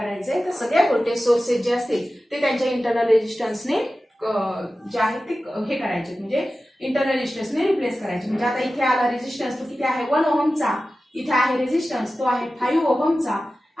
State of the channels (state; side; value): normal; both; correlation 0.95